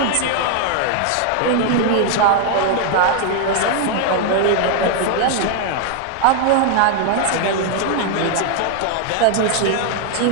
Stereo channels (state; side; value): different; both; correlation 0.00